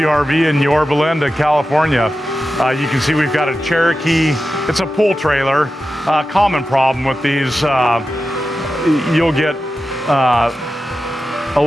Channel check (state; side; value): normal; both; correlation 0.92